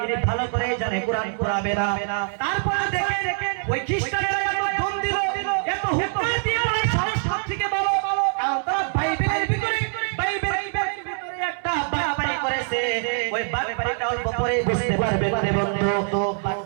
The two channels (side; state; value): left; silent; 63 dB below the other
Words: ইনি ভালো করে জানে কোরআন পুরাবে না। তারপরে দেখেন ওই খ্রিস্টানরা এত ধন দিল, এত হুঙ্কার দিয়ে বলে সাহস সব থেকে বড়, কারণ তারা বাইবেলের ভিতরে একটা বাটপারি করেছে। ওই বাটপারিটা অল্প পরে বুঝতে পারবেন রে বন্ধু।